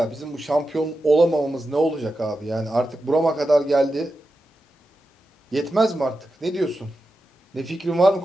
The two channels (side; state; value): both; normal; correlation 0.90